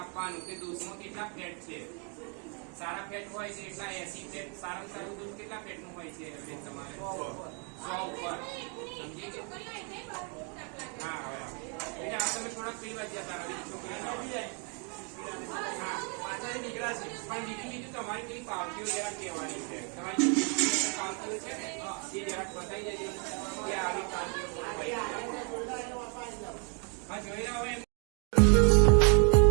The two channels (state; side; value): quieter; left; 37.6 dB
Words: કે દૂધમાં કેટલા ફેટ છે. સારા ફેટ હોય છે એટલા 80 ફેટ. સારામાં સારું દૂધ કેટલા ફેટ નું હોય છે તમારે? 100 ઉપર. સમજી ગયો? હા હવે બેટા આ તમે થોડાક પીવા જતા રહો. છોકરી હા પાછળ નીકળ્યા છે પણ બીજું તમારી કઈ પાવતીઓ જરા કહેવાની છે. તમારી પાવતીઓ છે ને એ જરાક બતાવી દેજો કે આવી પાવતીઓ હા જોઈ રહ્યા હોય.